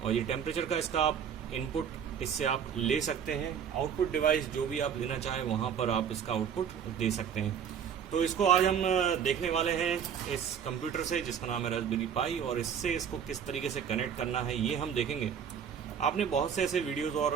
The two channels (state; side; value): quieter; left; 7.9 dB